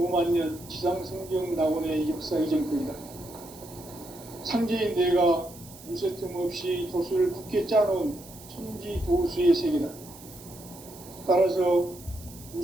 지상성경 낙원의 역사 이전권이다. 상제인 내가 무쇠틈 없이 도수를 굳게 짜놓은 천지 도수의 세계다. 따라서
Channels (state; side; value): noise; right; hiss, 19 dB below the sound